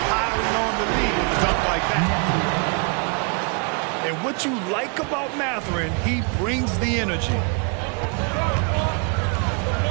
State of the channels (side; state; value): left; quieter; 36.7 dB